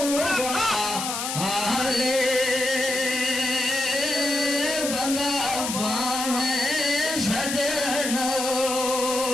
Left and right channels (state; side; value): noise; left; hiss, 4 dB below the sound